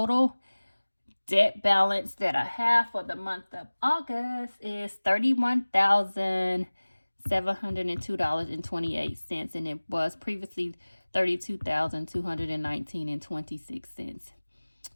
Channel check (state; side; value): inverted; both; correlation -1.00